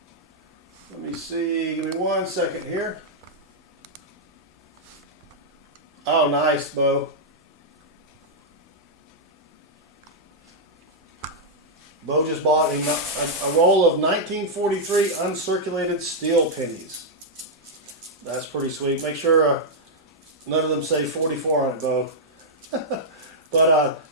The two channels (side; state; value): both; normal; correlation -0.06